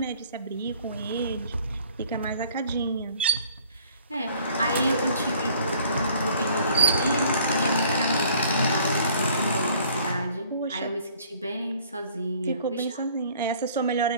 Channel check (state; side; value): inverted; both; correlation -0.56